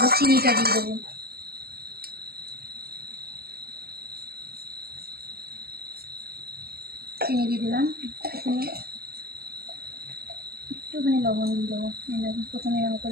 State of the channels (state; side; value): late; left; 0.45 ms